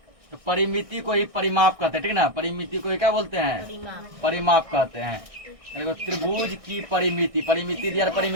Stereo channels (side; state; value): left; late; 1.6 ms